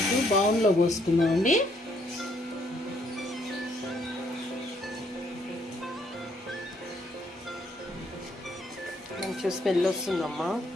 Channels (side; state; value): both; normal; correlation 0.69